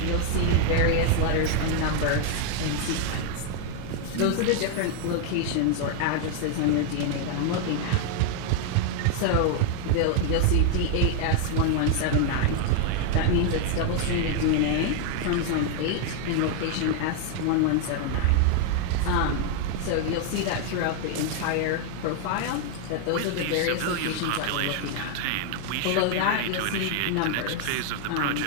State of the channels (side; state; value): both; different; correlation 0.00